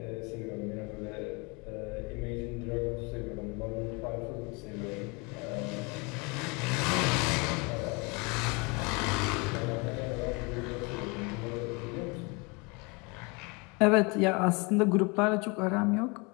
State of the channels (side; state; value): right; quieter; 28.0 dB